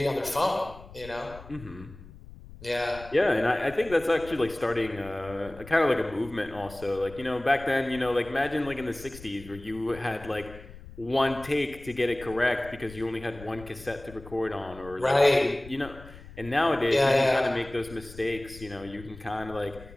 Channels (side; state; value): left; noise; rumble, 17 dB below the sound